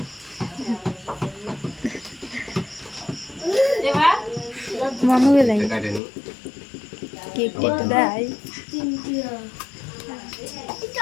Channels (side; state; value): right; drops out; at 6.0 s